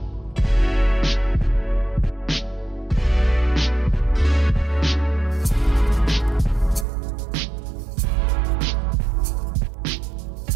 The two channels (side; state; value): left; drops out; at 6.9 s